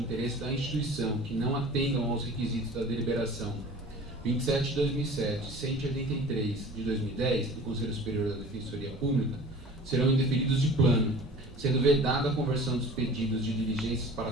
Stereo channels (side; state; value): both; normal; correlation 0.43